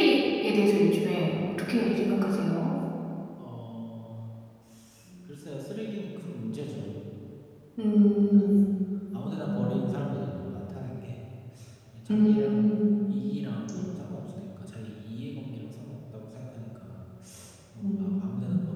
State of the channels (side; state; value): both; identical; correlation 1.00